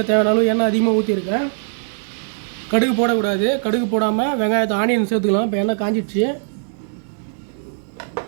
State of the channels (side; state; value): left; silent; digital silence